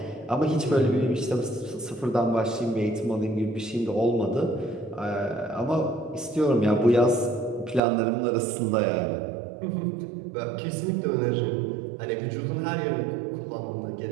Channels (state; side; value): drops out; left; at 7.8 s